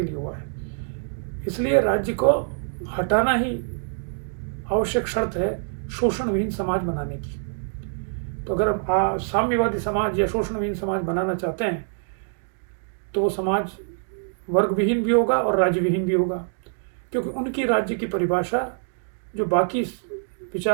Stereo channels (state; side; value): silent; left; digital silence